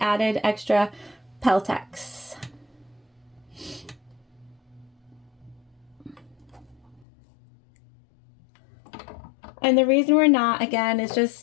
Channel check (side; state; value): right; drops out; at 7.0 s